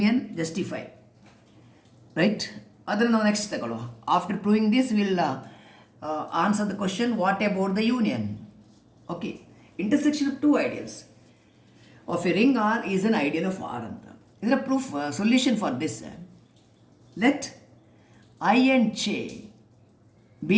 justify, right? ಅದನ್ನು ನಾವು next ತಗೊಳ್ಳುವ. After proving this will answer the question, what about the union? Okay, intersection of two ideals of a ring R is an ideal of R anta. Is a proof solution for this. Let I and J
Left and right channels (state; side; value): identical; both; correlation 1.00